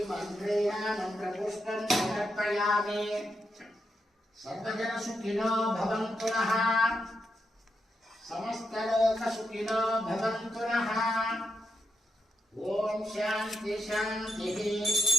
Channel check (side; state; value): both; normal; correlation 0.84